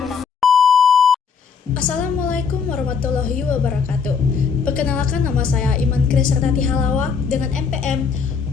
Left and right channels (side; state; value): right; quieter; 5.9 dB